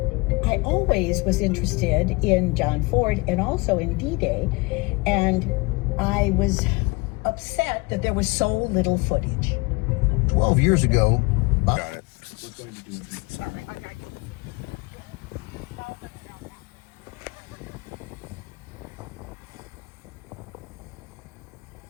I always was interested in John Ford and also in D-Day, and I was upset that there was so little footage. 12 years ago, Got it.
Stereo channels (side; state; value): right; quieter; 26.0 dB